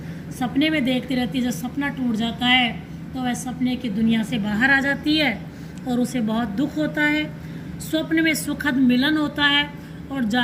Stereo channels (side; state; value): both; identical; correlation 1.00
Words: सपने में देखती रहती है। जब सपना टूट जाता है तो वह सपने की दुनिया से बाहर आ जाती है और उसे बहुत दुख होता है। स्वप्न में सुखद मिलन होता है और